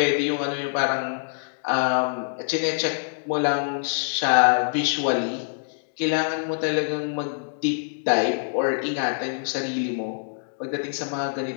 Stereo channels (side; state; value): right; silent; digital silence